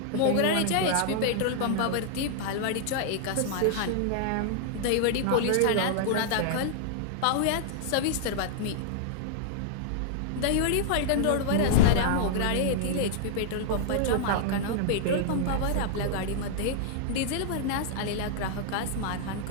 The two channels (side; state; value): both; different; correlation -0.01